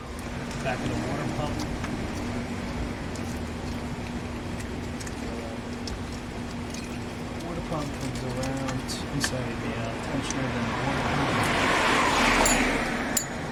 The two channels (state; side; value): identical; both; correlation 1.00